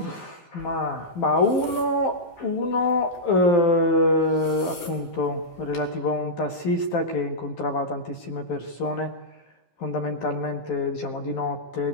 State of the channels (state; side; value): late; right; 12 ms